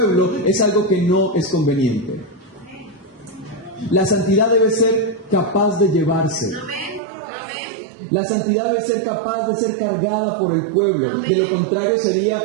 es algo que no es conveniente. La santidad debe ser capaz de llevarse. La santidad debe ser capaz de ser cargada por el pueblo. De lo contrario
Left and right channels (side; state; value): left; drops out; at 7.0 s